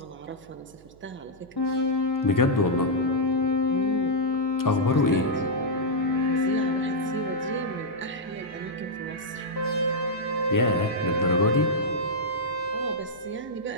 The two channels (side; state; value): right; noise; hum, 26 dB below the sound